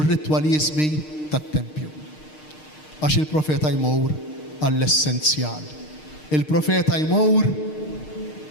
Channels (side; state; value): right; late; 6.5 ms